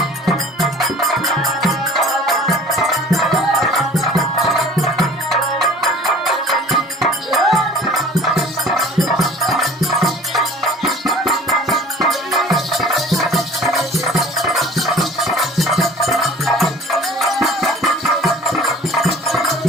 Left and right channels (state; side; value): normal; both; correlation 0.47